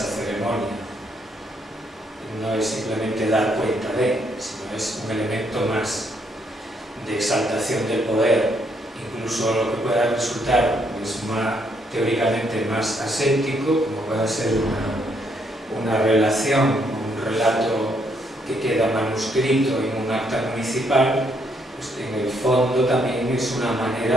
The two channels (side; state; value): both; normal; correlation 0.72